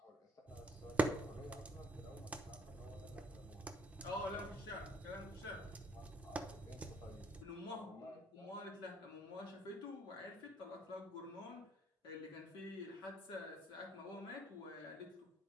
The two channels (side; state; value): both; normal; correlation 0.63